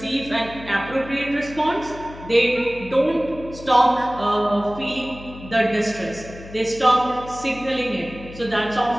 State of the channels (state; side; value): noise; left; hum, 16 dB below the sound